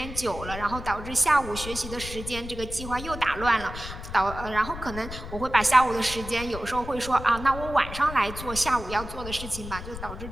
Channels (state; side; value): noise; left; rumble, 10 dB below the sound